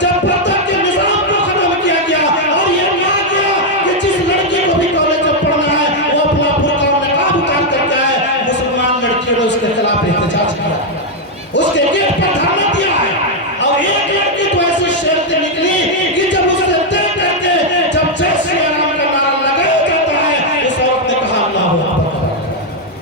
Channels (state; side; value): normal; both; correlation 0.00